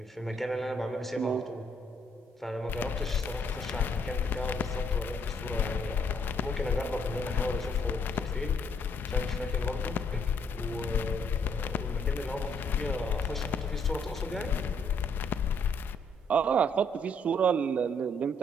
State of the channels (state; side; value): normal; both; correlation 0.69